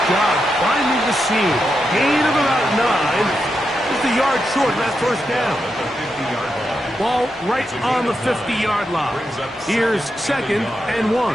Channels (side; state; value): both; normal; correlation 0.86